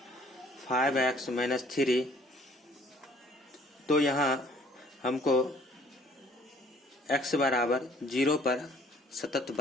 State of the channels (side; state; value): both; normal; correlation 0.57